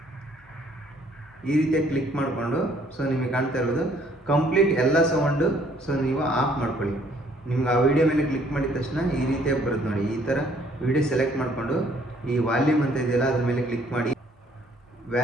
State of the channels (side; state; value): both; normal; correlation 0.62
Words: ಈ ರೀತಿಯಾಗಿ ಕ್ಲಿಕ್ ಮಾಡಿಕೊಂಡು ಸೊ ನಿಮಗೆ ಕಾಣ್ತಾ ಇರೋದು ಕಂಪ್ಲೀಟ್ ಎಲ್ಲ ಸೌಂಡು ಸೊ ನೀವು ಆಫ್ ಮಾಡ್ಕೊಳ್ಳಿ. ನಿಮ್ಗೆ ಆ ವಿಡಿಯೋ ಮೇಲೆ ಕ್ಲಿಕ್ ಮಾಡಿದ ತಕ್ಷಣ ಈ ರೀತಿಯಾಗಿ ಬರುತ್ತೆ ನೋಡಿ. ಈ ಥರ ವಿಡಿಯೋ ಸೆಲೆಕ್ಟ್ ಮಾಡಿಕೊಂಡು ಈ ವಾಲ್ಯೂಮ್ ಅಂತ ಇದೆಯಲ್ಲ ಅದ್ರ ಮೇಲೆ ಕ್ಲಿಕ್ ಮಾಡಿ.